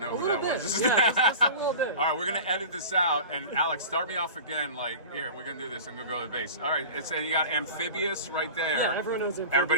who that was? Yeah, just a little bit. All right, we're going to edit this out. And Alex, start me off again. Like, here, we're going to do this. I'm going to go to the base. All right, you got Amphibious right there. Yeah, everyone knows Amphibious.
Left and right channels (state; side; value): inverted; both; correlation -0.35